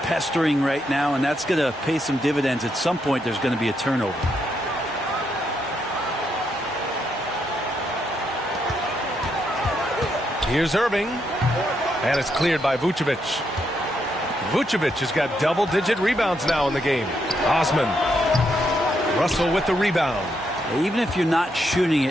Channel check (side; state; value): both; normal; correlation 0.78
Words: pestering right now, and that's going to pay some dividends. At some point, there's going to be a turnover. Here's Irving, and it's cleared by Vucevic. Vucevic has got double-digit rebounds now in the game. Osman. Russell with the rebound. Even if you're not shooting